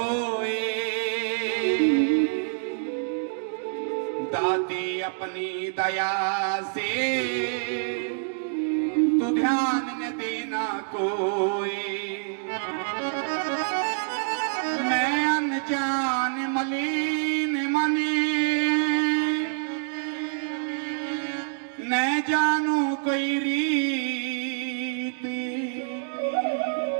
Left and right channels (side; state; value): left; silent; digital silence